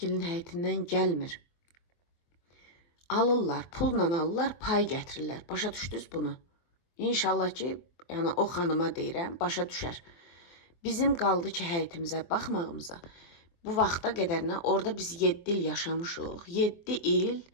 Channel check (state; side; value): late; right; 24 ms